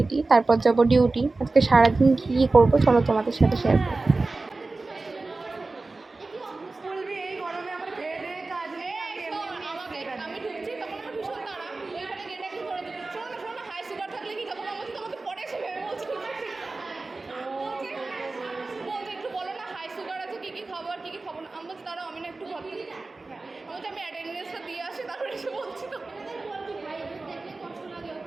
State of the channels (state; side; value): quieter; left; 3.5 dB